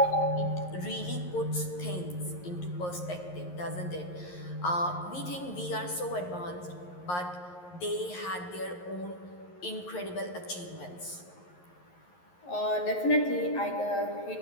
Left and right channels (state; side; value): late; right; 11 ms